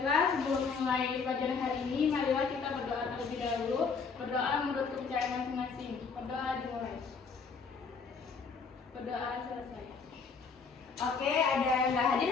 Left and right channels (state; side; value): quieter; right; 5.2 dB